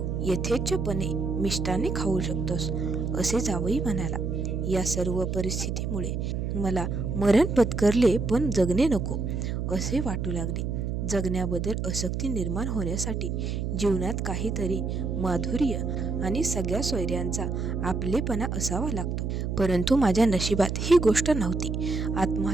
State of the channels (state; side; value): noise; right; hum, 2 dB below the sound